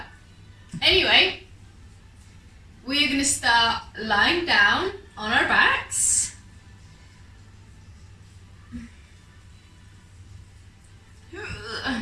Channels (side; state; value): both; identical; correlation 1.00